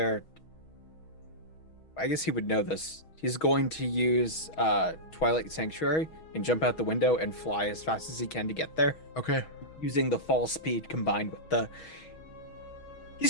I guess he would know this. He's going to use Twilight Sanctuary and jump out the window and fly as fast as he can to get there. Okay. Using the fall speed combined with the... He's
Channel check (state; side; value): late; right; 6.3 ms